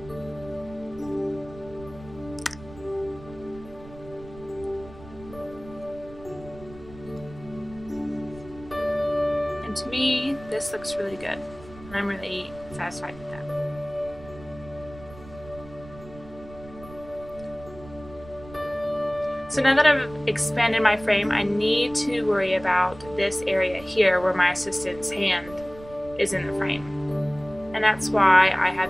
And to me, this looks really good. I'm really satisfied with that. So now that I've expanded my frame, I need to worry about this area here where my assistant's hand is in the frame. And that's why I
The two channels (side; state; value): right; noise; rumble, 18 dB below the sound